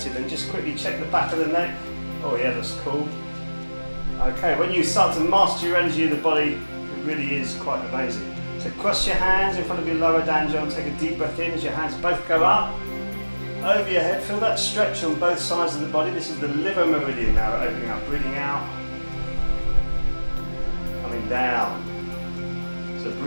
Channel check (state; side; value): inverted; both; correlation -1.00